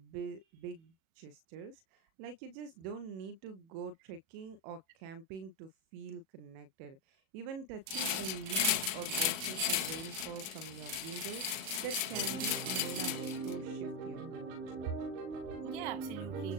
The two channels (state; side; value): late; left; 37 ms